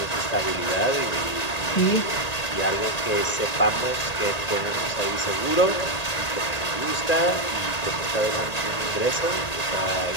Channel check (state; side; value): late; right; 1.9 ms